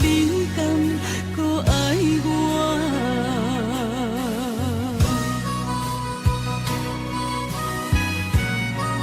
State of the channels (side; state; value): both; identical; correlation 1.00